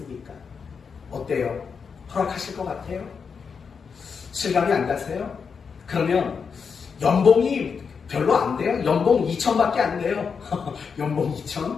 어때요? 허락하실 것 같아요? 실감이 안 가세요? 그러면 연봉이 별로 안 돼요? 연봉 2천밖에 안 돼요. 연봉 2천?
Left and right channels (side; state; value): right; quieter; 5.9 dB